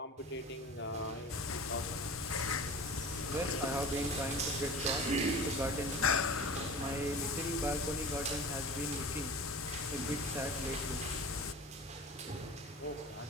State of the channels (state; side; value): normal; both; correlation 0.36